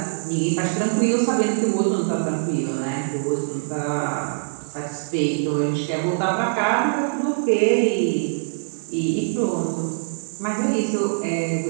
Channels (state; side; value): silent; left; digital silence